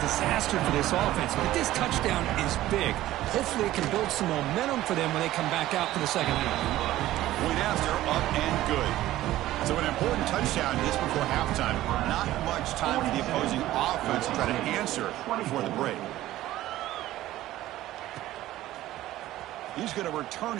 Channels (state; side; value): quieter; left; 15.0 dB